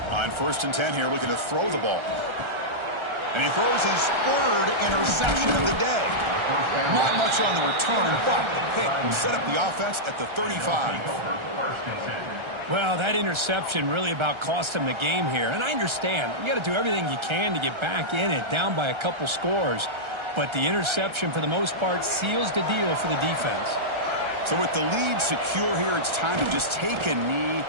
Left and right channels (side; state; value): left; late; 1.3 ms